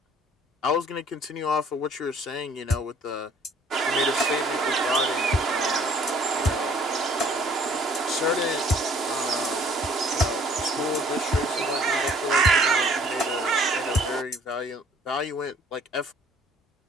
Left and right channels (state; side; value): normal; both; correlation 0.58